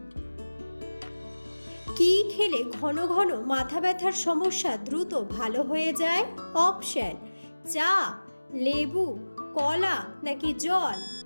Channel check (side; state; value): both; inverted; correlation -1.00